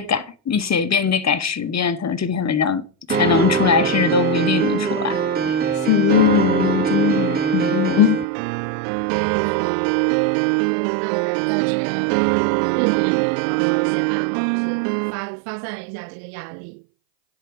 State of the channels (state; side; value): drops out; left; at 8.2 s